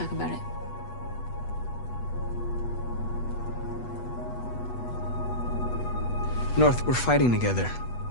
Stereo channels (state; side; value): late; right; 8.2 ms